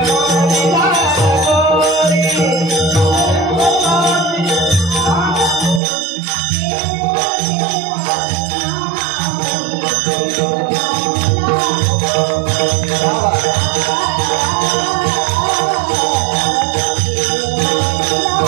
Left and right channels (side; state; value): left; drops out; at 5.8 s